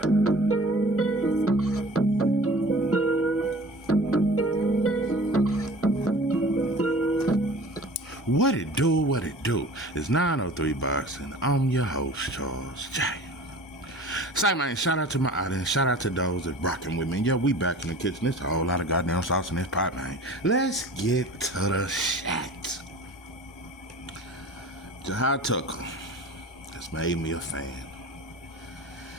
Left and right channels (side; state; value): both; normal; correlation 0.42